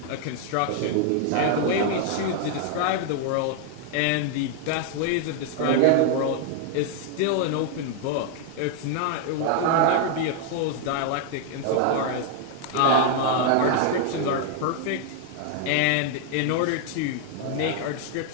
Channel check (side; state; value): both; different; correlation 0.00